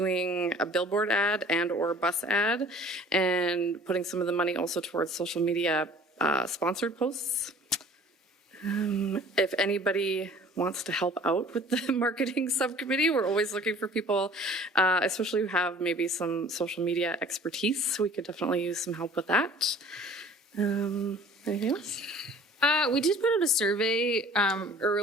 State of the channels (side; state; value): both; normal; correlation 0.49